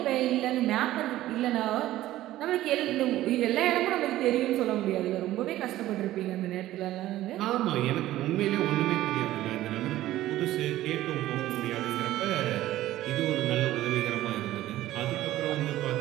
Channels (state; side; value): quieter; left; 14.8 dB